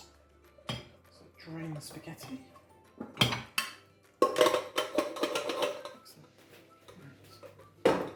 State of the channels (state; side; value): identical; both; correlation 1.00